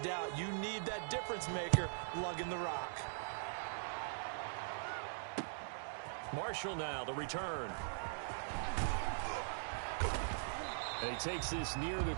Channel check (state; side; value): silent; left; digital silence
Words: You need that difference maker lugging the rock. Marshall now, the return. And he takes this near the